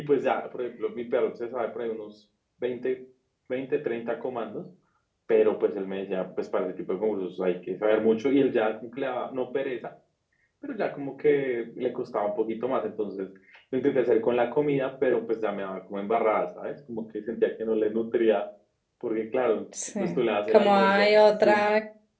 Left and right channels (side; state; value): both; identical; correlation 1.00